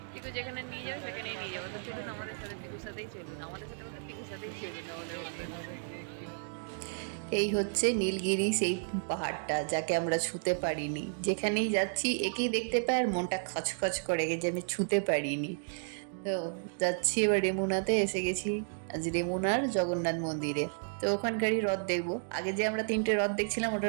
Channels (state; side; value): silent; left; digital silence